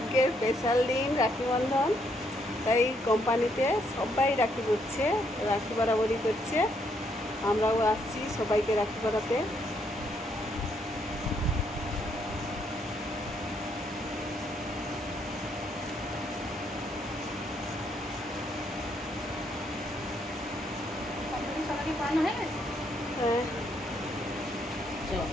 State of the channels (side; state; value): both; normal; correlation 0.73